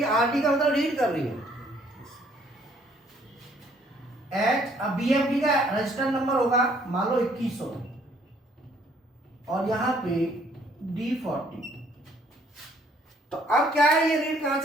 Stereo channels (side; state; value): both; normal; correlation 0.63